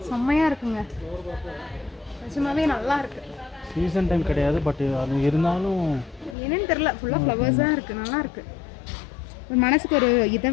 செம்மையாக இருக்குங்க. நிஜமாவே நல்லா இருக்கு. சீசன் டைம் கிடையாது, பட் அது இருந்தாலும் என்னன்னு தெரில. ஃபுல்லாக ஃப்ளவர்ஸாக இருக்குது. நல்லா இருக்குது. ஒரு மனசுக்கு ஒரு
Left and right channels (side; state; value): right; drops out; at 6.4 s